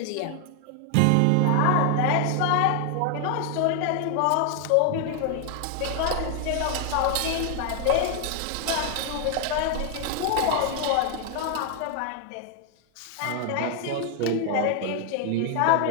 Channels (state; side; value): different; both; correlation 0.00